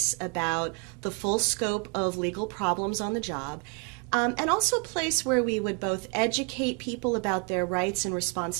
about the full scope of legal problems on the job, and also a place where we would both educate people about their rights and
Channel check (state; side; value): quieter; left; 34.8 dB